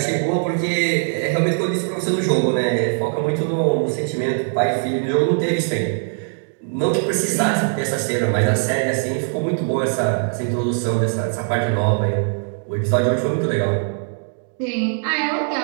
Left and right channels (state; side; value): silent; left; digital silence